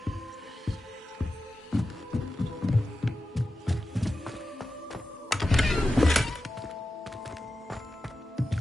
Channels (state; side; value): normal; both; correlation 0.92